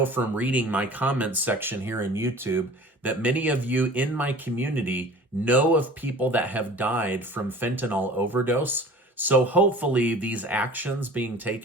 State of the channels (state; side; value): normal; both; correlation 0.43